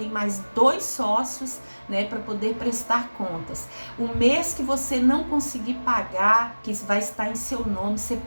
mais 2 sócios, né, para poder prestar contas. O mês que você não conseguir pagar, que vai estar em seu nome, você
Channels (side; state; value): both; inverted; correlation -1.00